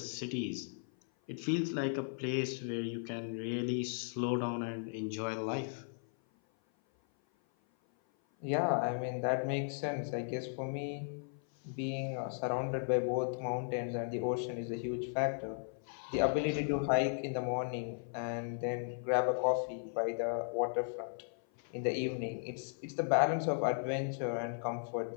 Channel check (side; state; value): right; silent; 54 dB below the other